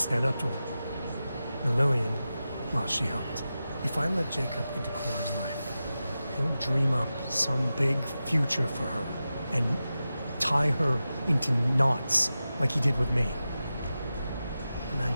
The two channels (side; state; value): both; inverted; correlation -0.93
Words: up to him. And Lillian, well, she helped. If I let Jacob into Cora's life, he'll dream up some big future for her, and tie her into knots like he did with me. A man